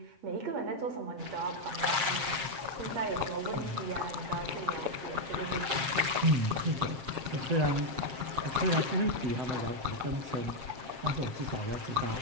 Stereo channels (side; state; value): left; late; 7.5 ms